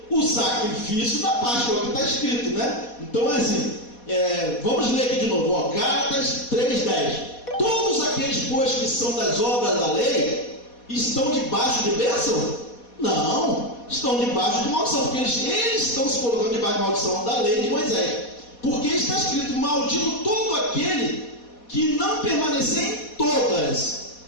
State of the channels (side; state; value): right; late; 4.2 ms